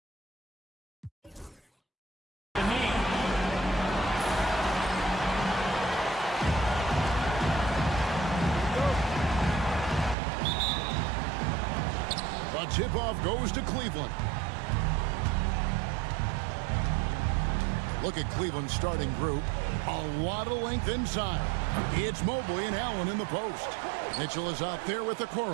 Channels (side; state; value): left; drops out; at 10.2 s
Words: tip-off goes to Cleveland. Look at Cleveland's starting group. A lot of length inside. It's Mobley and Allen in the post. Mitchell is out there with the